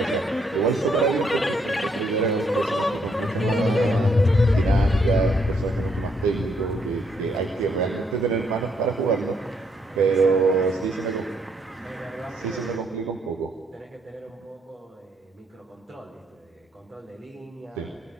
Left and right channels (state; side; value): normal; both; correlation 0.72